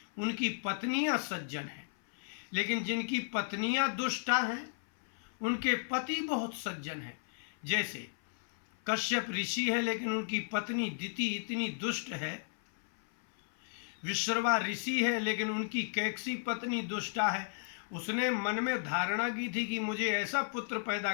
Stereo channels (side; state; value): right; silent; 55 dB below the other